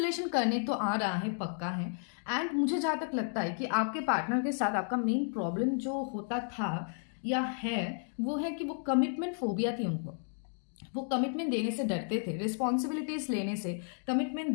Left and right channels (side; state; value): right; silent; 56 dB below the other